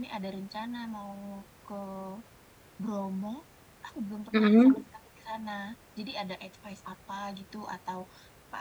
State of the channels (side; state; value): both; identical; correlation 1.00